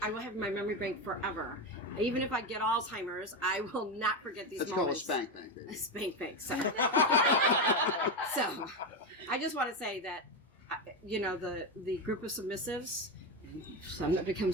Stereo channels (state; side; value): normal; both; correlation 0.13